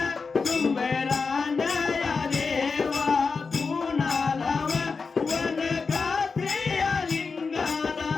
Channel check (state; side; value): quieter; right; 4.8 dB